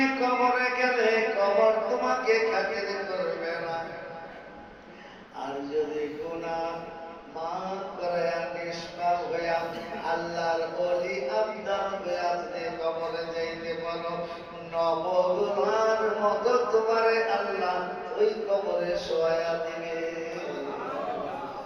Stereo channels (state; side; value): identical; both; correlation 1.00